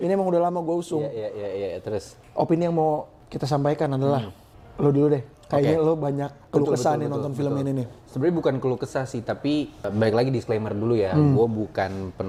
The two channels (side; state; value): both; identical; correlation 1.00